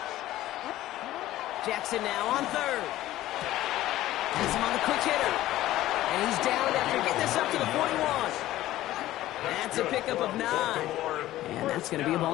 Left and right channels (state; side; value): quieter; right; 14.9 dB